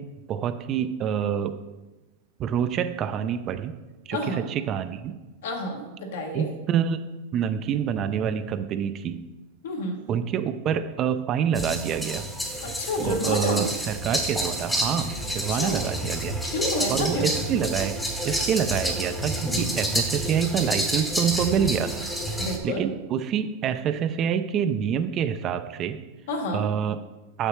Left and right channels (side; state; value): left; quieter; 4.8 dB